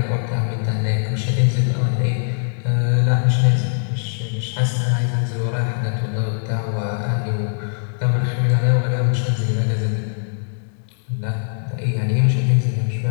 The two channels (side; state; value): right; silent; 65 dB below the other